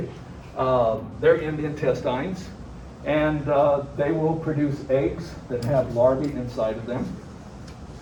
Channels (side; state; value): both; identical; correlation 1.00